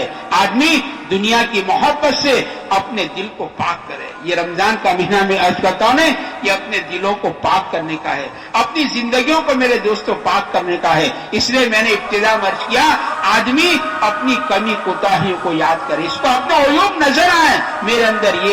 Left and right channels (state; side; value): identical; both; correlation 1.00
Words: آدمی دنیا کی محبت سے اپنے دل کو پاک کرے. یہ رمضان کا مہینہ میں عرض کرتا ہوں یہ اپنے دلوں کو پاک کرنے کا ہے، اپنی زندگیوں کو میرے دوستوں پاک کرنے کا ہے. اس لیے میں نے ابتدا میں عرض کیا آدمی اپنی کمی کوتاہیوں کو یاد کرے، اس کو اپنا عیوب نظر آئے، میرے اندر